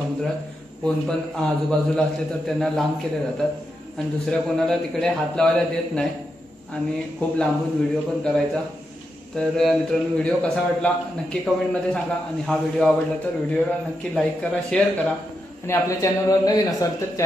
कोण पण आजूबाजूला असले तर त्यांना लांब केले जातात आणि दुसऱ्या कोणाला तिकडे हात लावायला देत नाही आणि खूप लांबून व्हिडिओ पण करायचा. तर मित्रांनो, व्हिडिओ कसा वाटला नक्की कमेंटमध्ये सांगा आणि हा व्हिडिओ आवडला तर व्हिडिओला नक्की लाईक करा, शेअर करा आणि आपल्या चॅनलवर नवीन असाल तर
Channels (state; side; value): normal; both; correlation 0.85